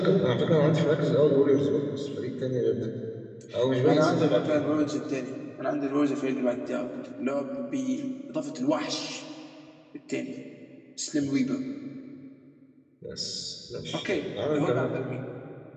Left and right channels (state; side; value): identical; both; correlation 1.00